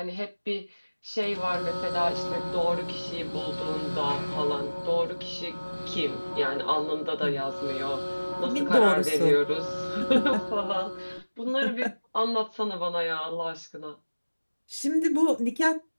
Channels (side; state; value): both; inverted; correlation -1.00